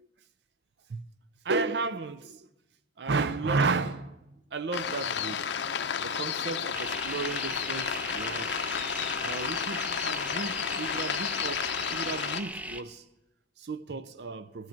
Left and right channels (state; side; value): normal; both; correlation 0.05